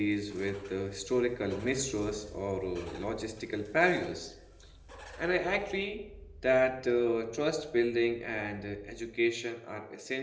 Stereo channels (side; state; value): both; identical; correlation 1.00